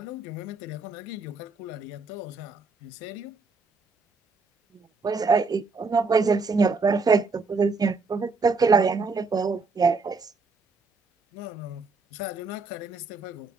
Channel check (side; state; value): left; quieter; 4.0 dB